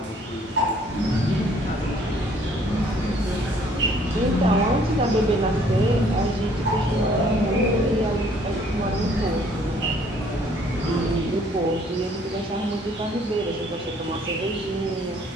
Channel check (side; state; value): both; normal; correlation 0.60